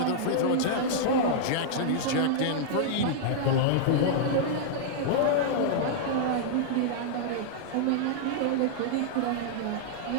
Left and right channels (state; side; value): different; both; correlation -0.01